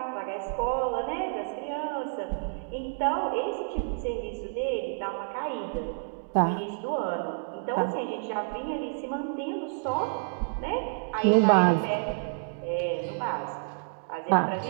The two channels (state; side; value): silent; left; digital silence